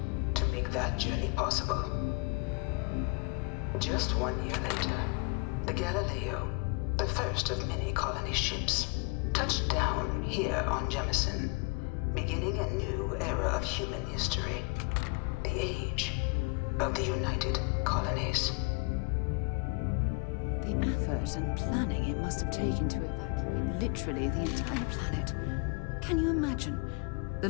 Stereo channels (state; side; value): quieter; right; 31.9 dB